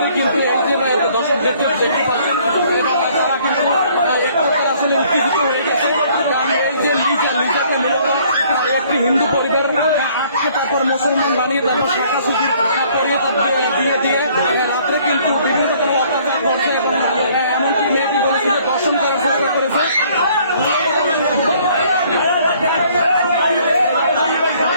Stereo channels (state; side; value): inverted; both; correlation -0.60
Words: কিন্তু এই যে দর্শক দেখতে পাচ্ছেন, এবং তারা কিন্তু এক প্রকার আসলে উত্তেজিত হয়ে গেছে। কারণ এই যে লিজাকে মূলত একটি হিন্দু পরিবার আটকে তারপর মুসলমান বানিয়ে তারপর শাখা সুযোগ করিয়ে তারপর দিয়ে দিয়ে রাত্রে কিন্তু বিভিন্ন রকম অত্যাচার করছে এবং এমনকি মেয়েটি বলেছিল দর্শন করার চেষ্টা করেছে।